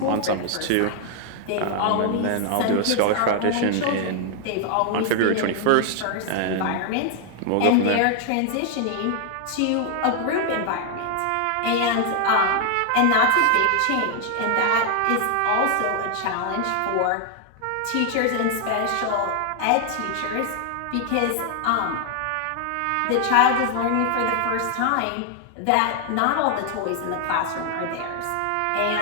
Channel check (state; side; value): different; both; correlation 0.00